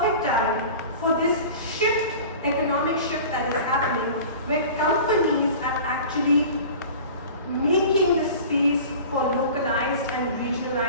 time for this shift, economic shift that is happening, where companies are actually making the space for localized and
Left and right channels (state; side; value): inverted; both; correlation -0.39